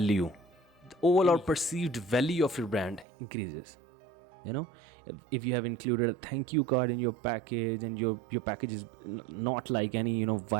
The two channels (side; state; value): left; drops out; at 3.1 s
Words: The overall perceived value of your brand increases. If you have included a thank you card in your package, and your package is not like any